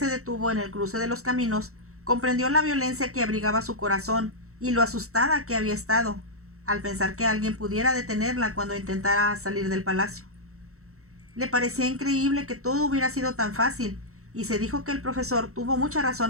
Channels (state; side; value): late; left; 0.64 ms